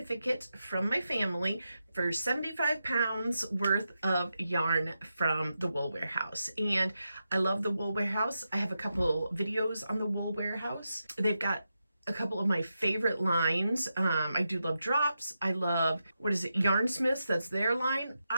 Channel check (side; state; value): both; inverted; correlation -0.88